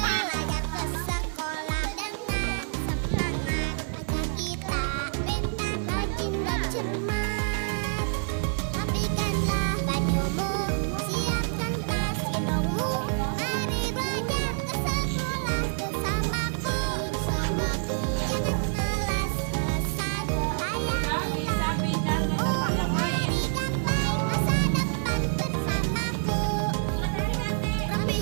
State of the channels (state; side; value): silent; left; 60 dB below the other